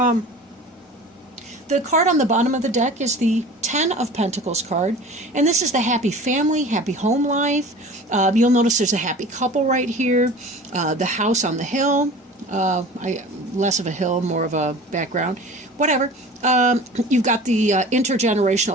card on the bottom of the deck is the Ten of Pentacles card. And this is the happy family, happy home life. You'll notice there's a happy couple right here. The house on the hill. Less of a hill, more of a background. Whatever. You've got the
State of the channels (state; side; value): normal; both; correlation 0.40